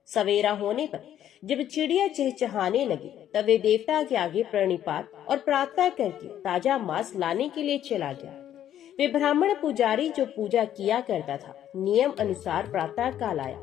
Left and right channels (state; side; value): quieter; right; 11.0 dB